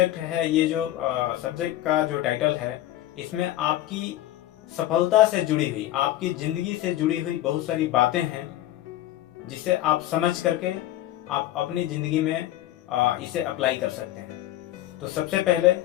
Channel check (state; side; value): quieter; right; 14.2 dB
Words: है, ये जो सब्जेक्ट का जो टाइटल है, इसमें आपकी सफलता से जुड़ी हुई, आपकी जिंदगी से जुड़ी हुई बहुत सारी बातें हैं जिसे आप समझ करके आप अपनी जिंदगी में इसे अप्लाई कर सकते हैं। तो सबसे पहले